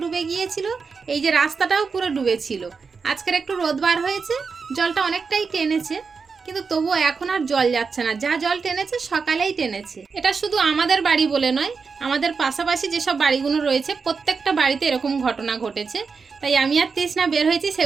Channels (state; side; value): quieter; left; 5.1 dB